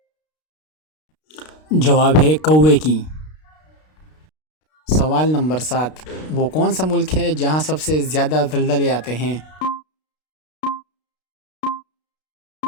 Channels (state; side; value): late; right; 32 ms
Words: جواب ہے کوے کی۔ سوال نمبر 7، وہ کون سا ملک ہے جہاں سب سے زیادہ زلزلے آتے ہیں؟